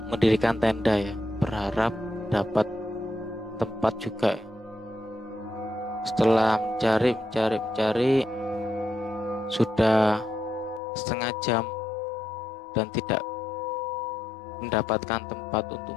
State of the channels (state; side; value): drops out; right; at 10.8 s